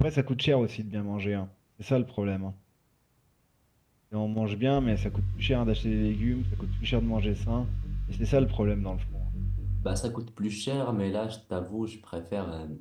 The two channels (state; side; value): identical; both; correlation 1.00